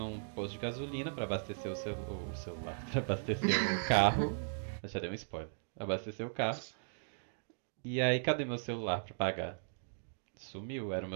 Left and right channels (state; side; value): silent; left; digital silence